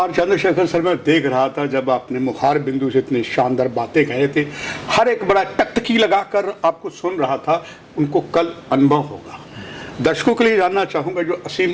चंद्रशेखर सर, मैं देख रहा था जब आपने मुखार बिंदु से इतनी शानदार बातें कहे थे, हर एक बड़ा टकटकी लगाकर आपको सुन रहा था। उनको कल अनुभव होगा। दर्शकों के लिए जानना चाहूँगा, जो असीम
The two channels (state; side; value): identical; both; correlation 1.00